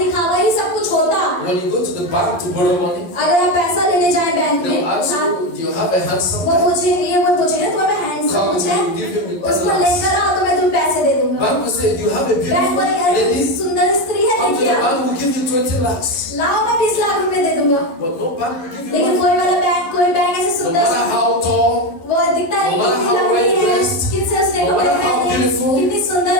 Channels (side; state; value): right; late; 11 ms